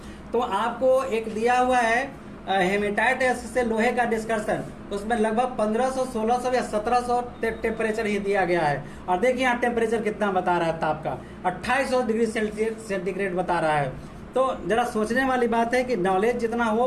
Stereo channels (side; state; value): both; identical; correlation 1.00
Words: तो आपको एक दिया हुआ है हेमेटाइट से लोहे का डिस्कशन, उसमें लगभग 1500, 1600 या 1700 टेम्परेचर ही दिया गया है। और देखिए यहाँ टेम्परेचर कितना बता रहा है ताप का, 2800 डिग्री सेंटीग्रेड बता रहा है। तो जरा सोचने वाली बात है कि नॉलेज जितना हो